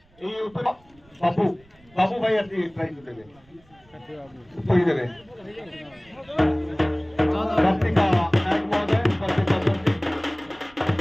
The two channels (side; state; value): right; noise; rumble, 30 dB below the sound